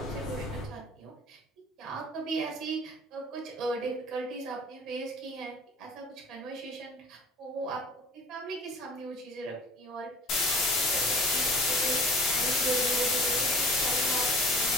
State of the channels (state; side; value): normal; both; correlation 0.46